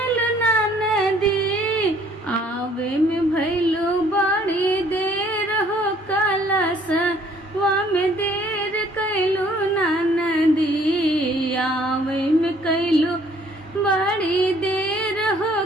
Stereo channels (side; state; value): both; normal; correlation 0.60